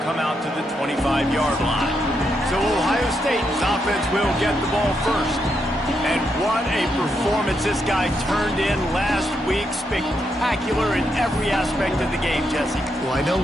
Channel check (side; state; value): both; normal; correlation 0.81